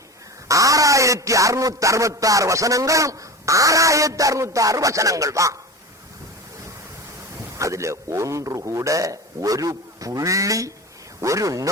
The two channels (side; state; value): both; normal; correlation 0.29